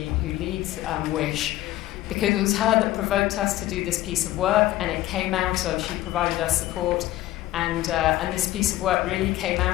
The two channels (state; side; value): quieter; right; 15.4 dB